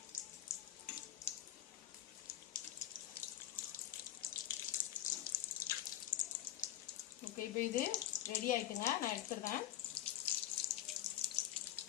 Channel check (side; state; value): right; quieter; 12.8 dB